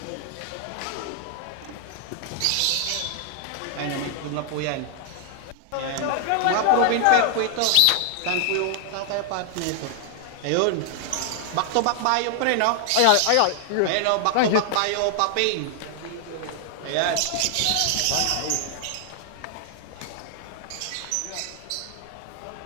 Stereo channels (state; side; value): different; both; correlation 0.00